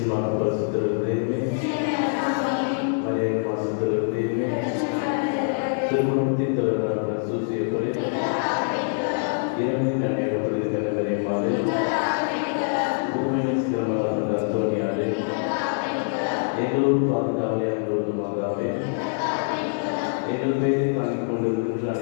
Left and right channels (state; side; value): silent; right; 62 dB below the other